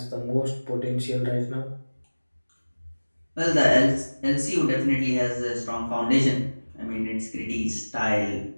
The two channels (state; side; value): inverted; both; correlation -1.00